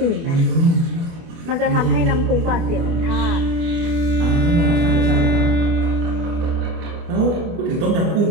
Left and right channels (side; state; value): left; late; 24 ms